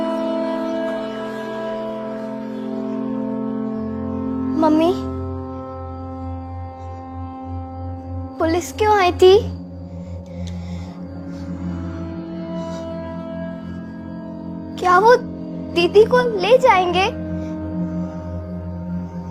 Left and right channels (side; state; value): both; identical; correlation 1.00